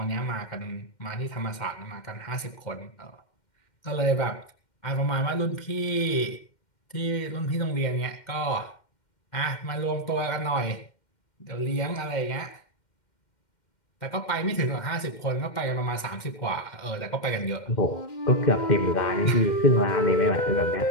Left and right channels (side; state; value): right; late; 2.1 ms